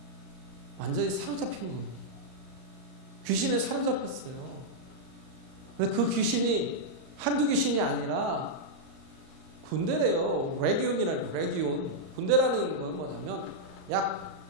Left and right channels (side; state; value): left; late; 38 ms